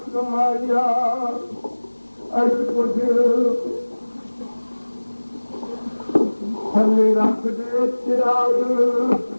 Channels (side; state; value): both; inverted; correlation -1.00